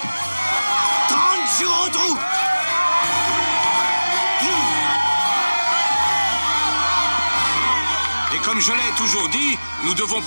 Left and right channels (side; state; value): both; inverted; correlation -1.00